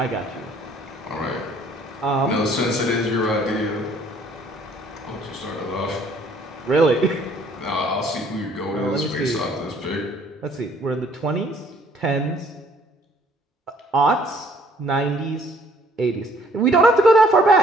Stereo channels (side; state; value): both; normal; correlation 0.61